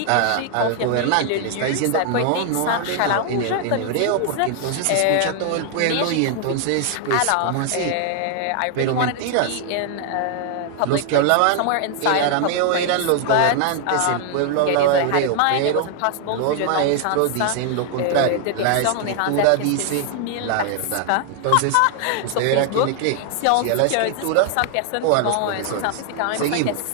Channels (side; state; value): both; different; correlation 0.00